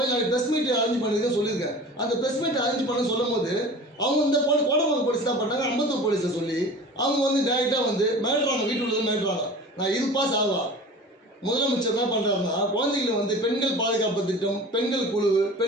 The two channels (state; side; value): normal; both; correlation 0.39